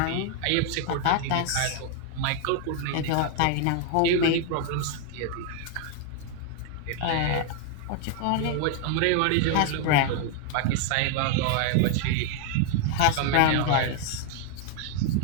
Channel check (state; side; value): different; both; correlation 0.00